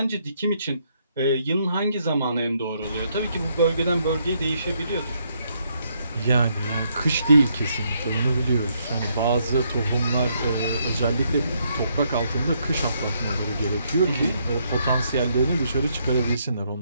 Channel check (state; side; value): inverted; both; correlation -0.74